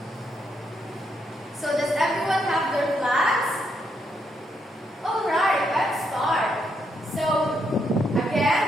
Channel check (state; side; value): normal; both; correlation 0.77